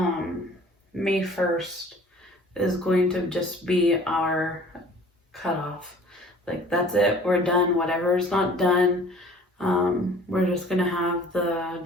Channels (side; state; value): both; normal; correlation 0.49